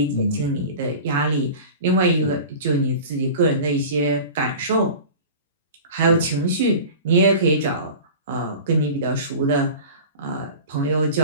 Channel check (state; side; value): inverted; both; correlation -0.36